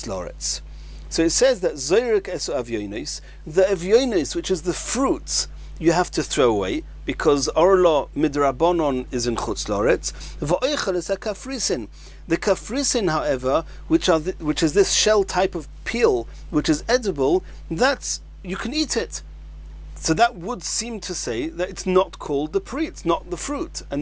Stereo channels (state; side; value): identical; both; correlation 1.00